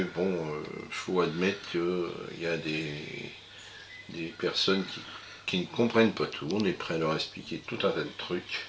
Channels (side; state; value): both; identical; correlation 1.00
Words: Bon, faut admettre qu'il y a des personnes qui ne comprennent pas tout. On est prêt à leur expliquer tout un tas de trucs.